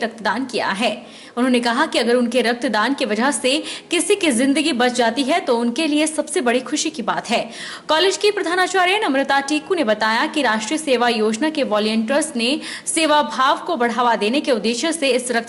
किया है। उन्होंने कहा कि अगर उनके रक्तदान की वजह से किसी की जिंदगी बच जाती है तो उनके लिए सबसे बड़ी खुशी की बात है। कॉलेज की प्रधानाचार्य नम्रता टीकू ने बताया कि राष्ट्रीय सेवा योजना के वॉलंटियर्स ने सेवा भाव को बढ़ावा देने के उद्देश्य से इस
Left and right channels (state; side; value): identical; both; correlation 1.00